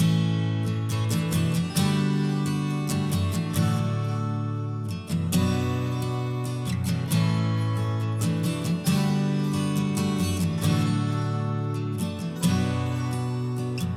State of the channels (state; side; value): identical; both; correlation 1.00